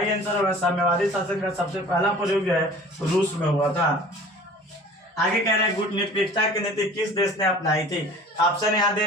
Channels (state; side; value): normal; both; correlation 0.45